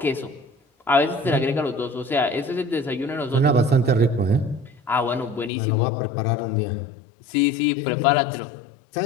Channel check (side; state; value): right; drops out; at 5.5 s